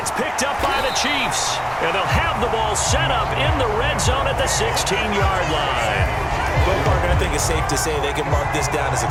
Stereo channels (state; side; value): identical; both; correlation 1.00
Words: picked up by the Chiefs. And they'll have the ball set up in the red zone at the 16-yard line. Well, partner, I think it's safe to say they can mark this down as